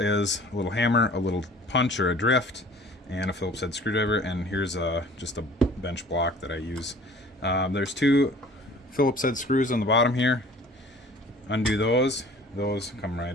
a little hammer, a little punch or a drift, and a Phillips head screwdriver, and here's just a bench block that I use. There's two Phillips head screws on the bottom here. Undo those come right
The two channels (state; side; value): normal; both; correlation 0.48